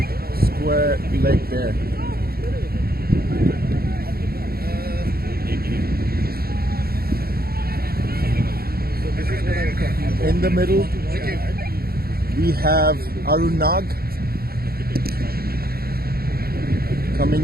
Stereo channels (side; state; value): left; late; 0.44 ms